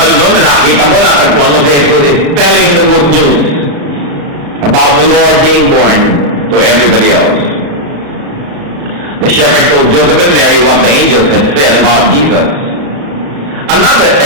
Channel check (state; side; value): late; left; 35 ms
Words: doon na nakita mo, natagpuan mo si Jesus is telling the good news about the Lord being born to everybody else. The shepherd told Joseph and Mary what the angels had said about Jesus. Another